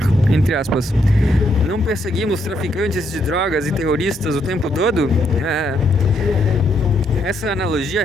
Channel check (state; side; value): normal; both; correlation 0.75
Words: entre aspas, não perseguimos traficantes de drogas e terroristas o tempo todo? Essa analogia